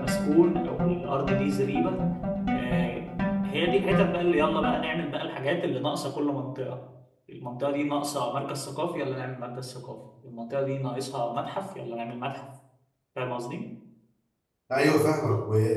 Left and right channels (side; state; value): both; identical; correlation 1.00